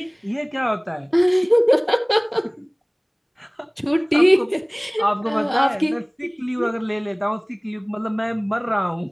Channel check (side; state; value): both; identical; correlation 1.00